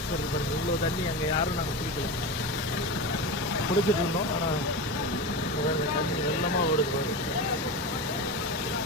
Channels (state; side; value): normal; both; correlation 0.23